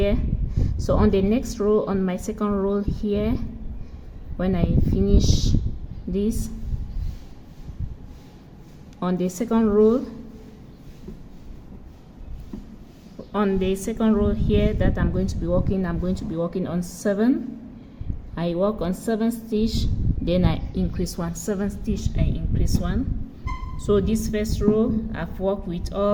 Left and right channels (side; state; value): both; identical; correlation 1.00